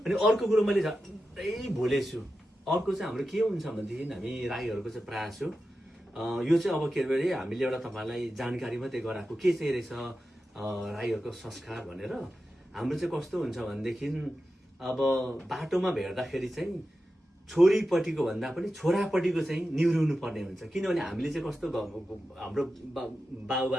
अर्को कुरो मैले झट्टै भुलेछु, अर्को चाहिँ हाम्रो के हुन्छ भनेदेखि हामी राईहरूको चाहिँ प्रयास हो यो चाहिँ अब के अरे हामीले एउटा तपाईँलाई जानकारी मात्रै गराएको के चाहिँ रहेछ राईहरूको संस्कार भनेर। हाम्रो चाहिँ कस्तो हुन्छ भनेदेखि अब बाटोमा भेट्दाखेरि चाहिँ छोरीपट्टिको भन्दा पनि छोरापट्टिको चाहिँ निहुरिनु पर्ने हुन्छ। किनभने हामीले चाहिँ कस्तो हाम्रो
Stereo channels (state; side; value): normal; both; correlation 0.91